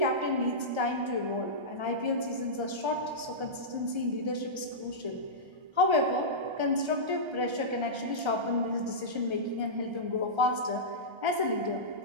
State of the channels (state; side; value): late; left; 1.3 ms